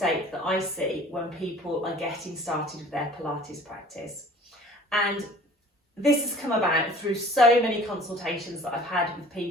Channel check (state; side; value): normal; both; correlation 0.48